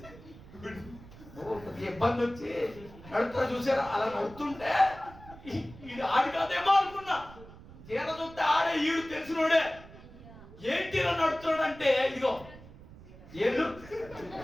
ఇబ్బంది వచ్చి నడుస్తారు చూసారా? అలా నడుతుంటే ఈడు ఆడి కాదేమో అనుకున్నా. తీర చూస్తే ఆడే ఈడు తెలిసినోడే. ఏంటి ఇలా నడుతున్నాడు అంటే, ఇదిగో ఏళ్ళు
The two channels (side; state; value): right; noise; rumble, 18 dB below the sound